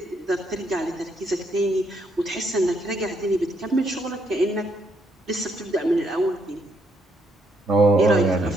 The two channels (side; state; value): both; normal; correlation 0.74